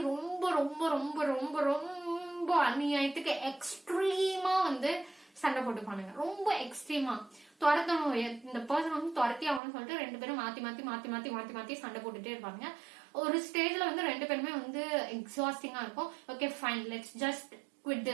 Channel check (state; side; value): drops out; left; at 9.6 s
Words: ரொம்ப ரொம்ப ரொம்ப ரொம்ப ரொம்ப அநியாயத்துக்கு எக்ஸ்ட்ரீமா வந்து சண்டை போட்டுப்பானுங்க. ரொம்ப எக்ஸ்ட்ரீமா துரத்தணும், இந்த பர்சன் வந்து துரத்தி ஆகணும்னு சொல்லிட்டு 2 பேரும் மாத்தி மாத்தி மாத்தி மாத்தி மாத்தி மாத்தி சண்டை போட்டுட்டே இருப்பாங்க. ஒரு ஸ்டேஜ்ல வந்து 2 பேருமே வந்து எக்ஸாஸ்டிங்கா இருக்கும். Okay fine, let's just quit